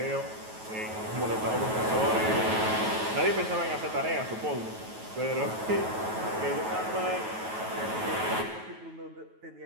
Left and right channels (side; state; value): left; late; 9.3 ms